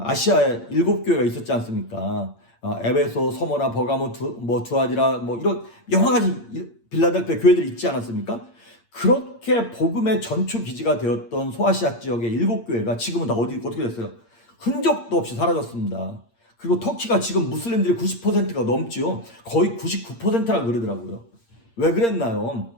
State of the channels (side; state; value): right; late; 8.7 ms